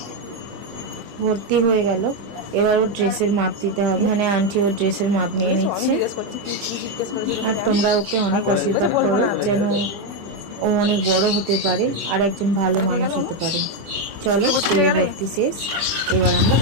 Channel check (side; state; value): left; late; 25 ms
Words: ভর্তি হয়ে গেল, এবার ওর ড্রেসের মাপ দিতে হবে। এখানে আন্টি ওর ড্রেসের মাপ নিয়ে নিচ্ছে। আর তোমরা ওকে অনেক আশীর্বাদ করো, যেন ও অনেক বড় হতে পারে আর একজন ভালো মানুষ হতে পারে। চলো, স্কুলে ভর্তি শেষ, এবার আমরা